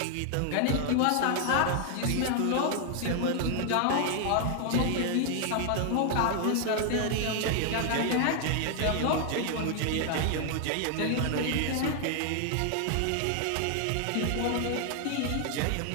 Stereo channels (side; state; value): both; different; correlation 0.00